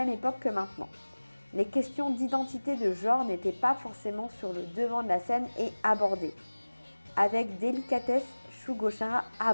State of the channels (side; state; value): both; inverted; correlation -1.00